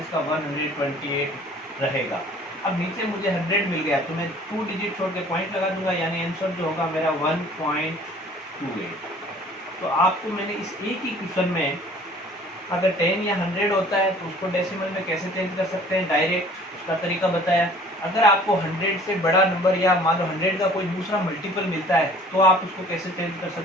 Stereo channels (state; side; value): normal; both; correlation 0.51